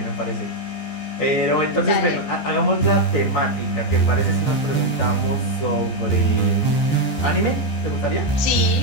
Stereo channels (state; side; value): late; right; 14 ms